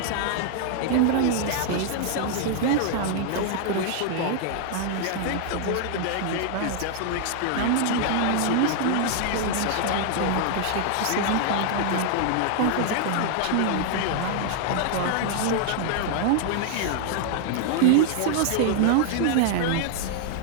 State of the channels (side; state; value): both; different; correlation 0.00